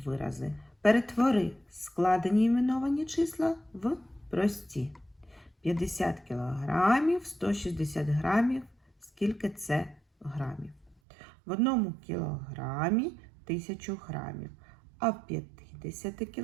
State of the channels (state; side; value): drops out; left; at 11.0 s